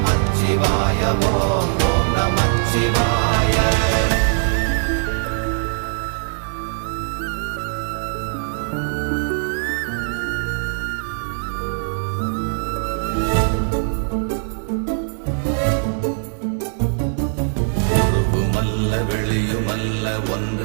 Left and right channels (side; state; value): left; silent; digital silence